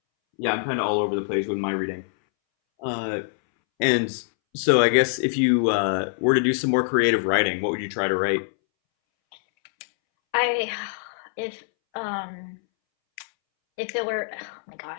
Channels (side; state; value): right; silent; 62 dB below the other